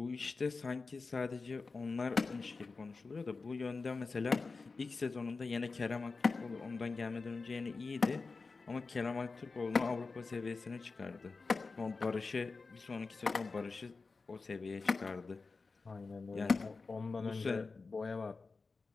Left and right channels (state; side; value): quieter; right; 4.2 dB